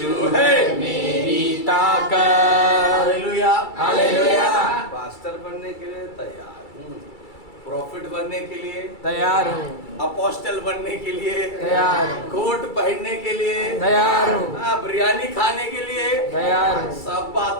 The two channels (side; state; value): right; late; 2.3 ms